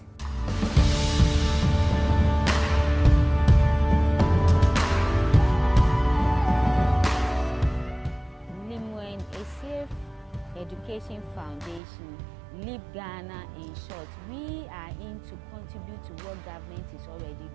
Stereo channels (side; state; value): left; drops out; at 11.8 s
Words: LEMUEL ESSIEH Education Foundation, LEAP Ghana in short, we are in to contribute to what government is already